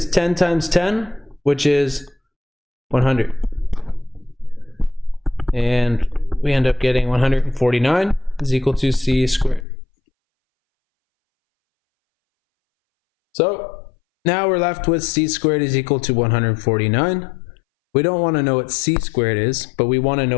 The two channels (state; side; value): drops out; right; at 9.7 s